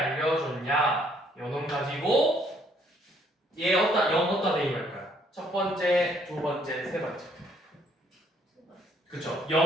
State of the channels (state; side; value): normal; both; correlation 0.65